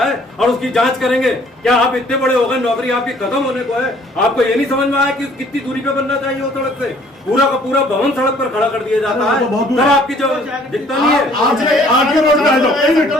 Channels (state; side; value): normal; both; correlation 0.58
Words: और उसकी जांच करेंगे। क्या आप इतने बड़े हो गए, नौकरी आपकी खत्म होने को है, आपको ये नहीं समझ में आया कि कितनी दूरी पे बनना चाहिए वो सड़क से? पूरा का पूरा भवन सड़क पर खड़ा कर दिया जाता है, तब आपकी जो दिखता नहीं है। आरटीओ रोड पे आ जाओ,